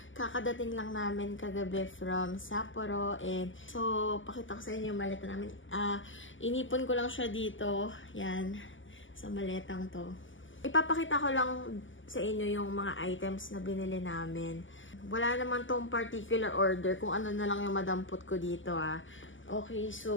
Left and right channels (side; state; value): right; late; 0.56 ms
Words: Kakadating lang namin kagabi from Sapporo and so pakita ko sa inyo yung maleta namin. Inipon ko lang siya dito, yan, sa maletang to. Ipapakita ko lang sa inyo yung mga items na binili namin. Wala naman tong particular order kung ano na lang yung madampot ko dito Okay,